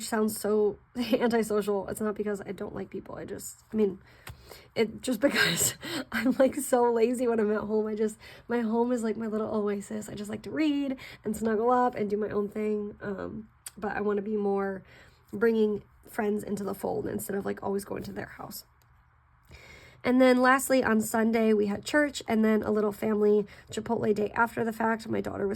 sounds so antisocial. It's not because I don't like people. It's just because I'm like so lazy when I'm at home. My home is like my little oasis. I just like to read and snuggle up and do my own thing. But I want to be more bringing friends into the fold instead of like always going to their house. And then lastly, on Sunday, we had church and then a little family Chipotle day after the fact. My daughter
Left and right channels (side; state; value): both; identical; correlation 1.00